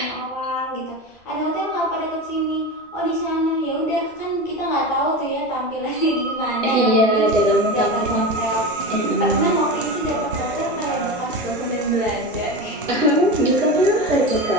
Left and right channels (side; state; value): both; normal; correlation 0.25